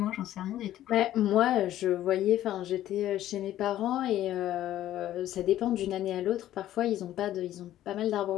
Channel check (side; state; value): right; quieter; 13.0 dB